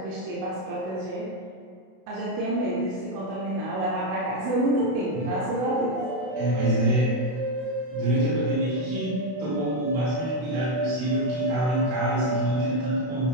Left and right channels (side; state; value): left; late; 32 ms